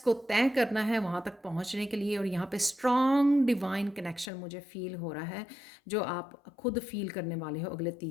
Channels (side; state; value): right; drops out; at 4.3 s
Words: तय करना है वहाँ तक पहुँचने के लिए। और यहाँ पे स्ट्रॉन्ग डिवाइन कनेक्शन मुझे फील हो रहा है, जो आप खुद फील करने वाले हो अगले